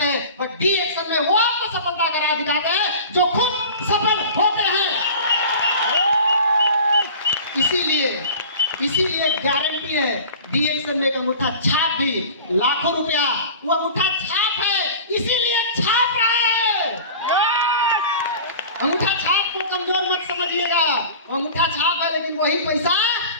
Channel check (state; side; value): inverted; both; correlation -0.39